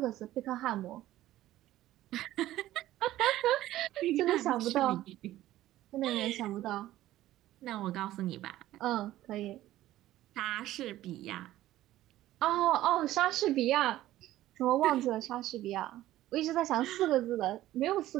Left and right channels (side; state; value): left; quieter; 14.7 dB